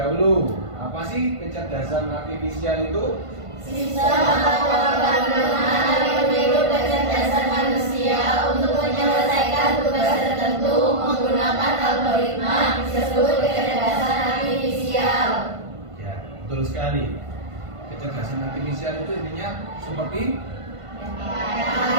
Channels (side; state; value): left; late; 1.5 ms